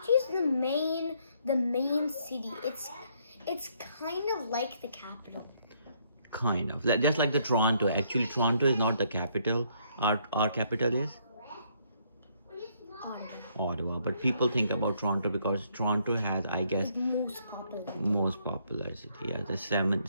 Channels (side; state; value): both; inverted; correlation -0.69